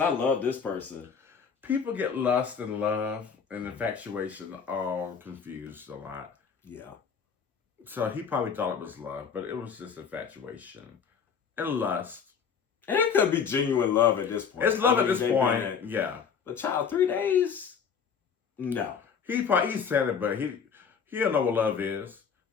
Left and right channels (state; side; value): quieter; right; 6.6 dB